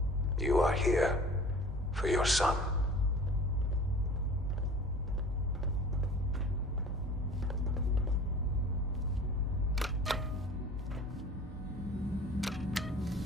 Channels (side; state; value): both; normal; correlation 0.44